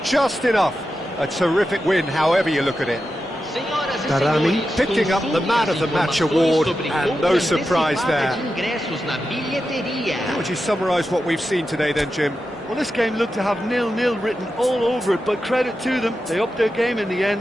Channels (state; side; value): normal; both; correlation 0.90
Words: just enough. A terrific win, however you look at it. Darami picking up the Man of the Match award, and no surprise there. How would you summarise what we've seen today then, Jim? Well, this game looked to have 0-0 written all over it, but credit to them. They upped their game in the